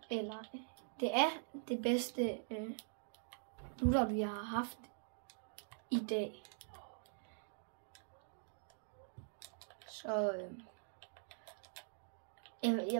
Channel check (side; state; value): left; silent; digital silence